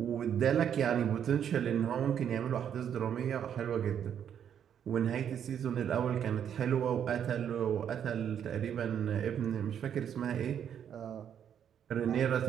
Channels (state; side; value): quieter; left; 8.9 dB